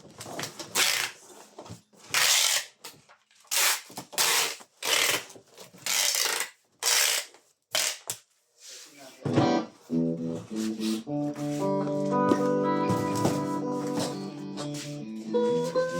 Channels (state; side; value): identical; both; correlation 1.00